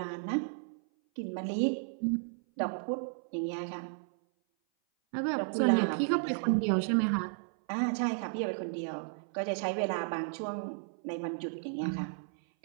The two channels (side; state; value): left; silent; 55 dB below the other